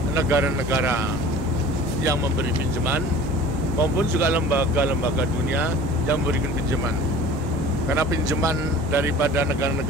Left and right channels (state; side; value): normal; both; correlation 0.43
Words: negara-negara yang memberi pinjaman maupun juga lembaga-lembaga dunia yang memberikan pinjaman. Karena pinjaman daripada